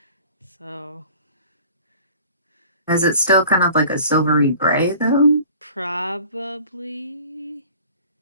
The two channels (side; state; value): both; inverted; correlation -0.47